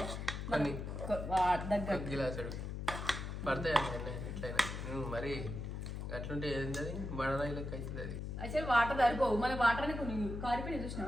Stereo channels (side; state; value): left; noise; hum, 5 dB below the sound